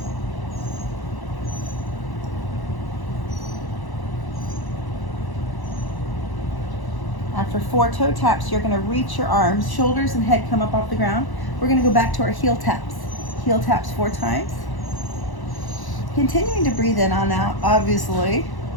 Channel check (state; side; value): late; right; 1.0 ms